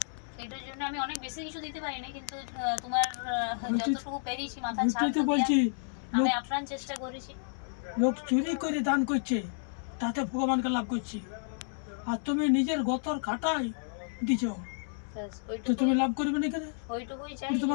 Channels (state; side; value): silent; right; 57 dB below the other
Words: এটার জন্য আমি অনেক বেশি কিছু দিতে পারি না, কিন্তু তোমার যতটুকু পেরেছি মাথার ছাদটা বলছি, আমি আপ্রাণ চেষ্টা করেছি। লোক চুরি করে দান করছে, তাতে ভগবানকে লাভ করছি, আর তুমি নিজের গতর খাটাই দিছো, তো তুমি লাভ করবে না কেন? ওইটুকুই চাই,